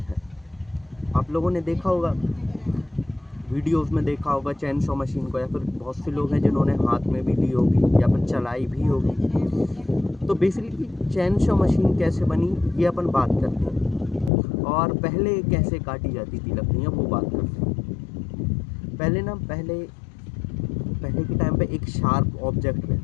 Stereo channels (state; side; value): drops out; right; at 14.3 s